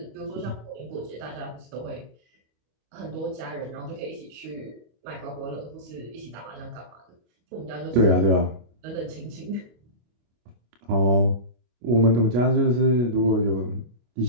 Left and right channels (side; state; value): left; late; 25 ms